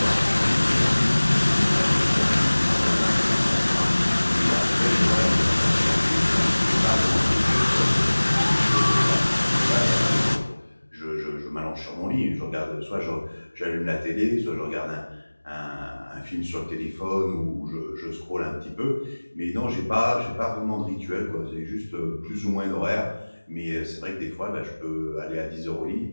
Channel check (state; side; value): inverted; both; correlation -1.00